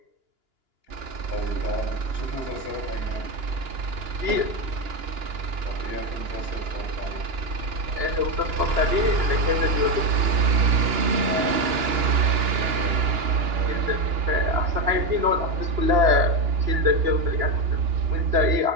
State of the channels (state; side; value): late; left; 2.9 ms